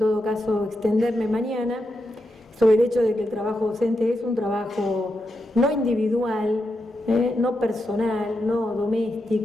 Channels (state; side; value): normal; both; correlation 0.86